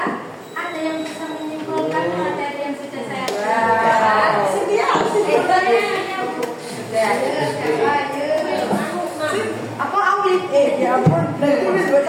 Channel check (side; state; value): both; identical; correlation 1.00